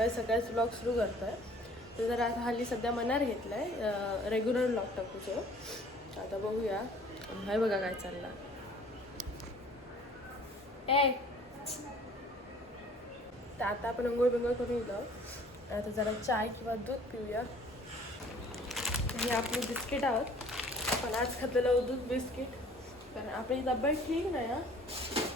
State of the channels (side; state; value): both; normal; correlation 0.52